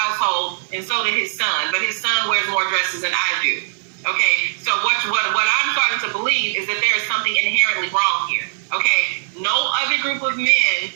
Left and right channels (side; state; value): left; silent; 62 dB below the other